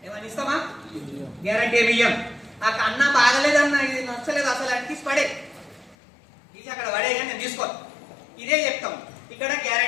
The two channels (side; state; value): right; drops out; at 6.0 s